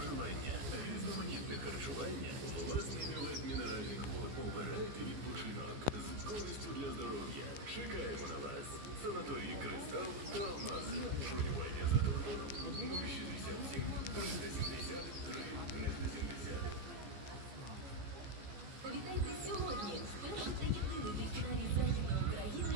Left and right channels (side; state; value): left; late; 15 ms